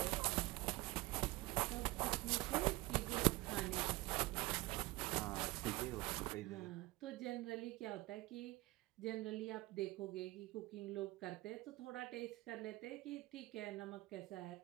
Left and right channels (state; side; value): quieter; left; 20.5 dB